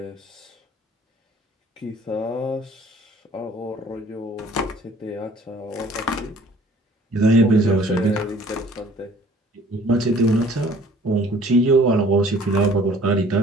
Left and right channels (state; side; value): normal; both; correlation 0.54